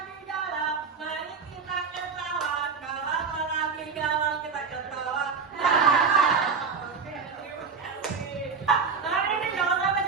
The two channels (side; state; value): left; quieter; 5.4 dB